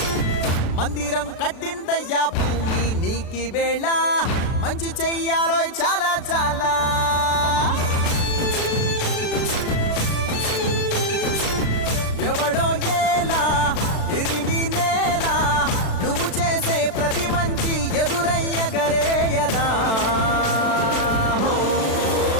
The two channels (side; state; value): right; late; 36 ms